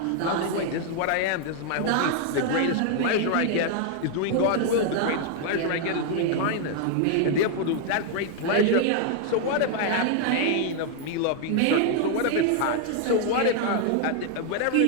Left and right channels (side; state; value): both; different; correlation 0.00